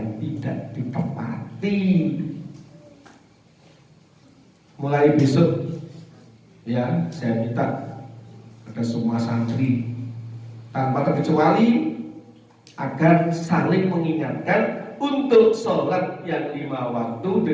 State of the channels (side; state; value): both; identical; correlation 1.00